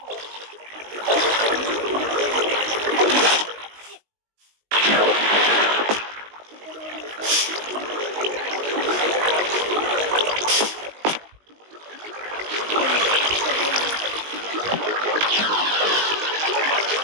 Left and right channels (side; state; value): left; late; 19 ms